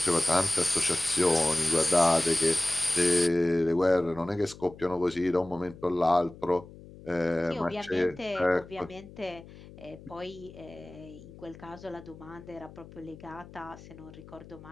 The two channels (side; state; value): left; noise; hum, 18 dB below the sound